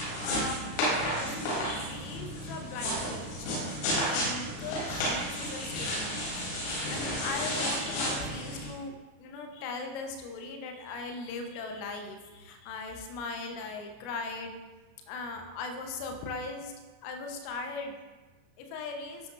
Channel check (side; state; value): right; late; 33 ms